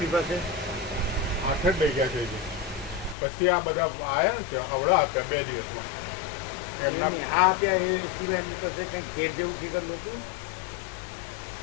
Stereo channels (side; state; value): right; drops out; at 3.2 s